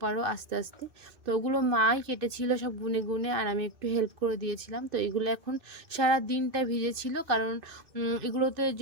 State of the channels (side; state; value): left; late; 2.6 ms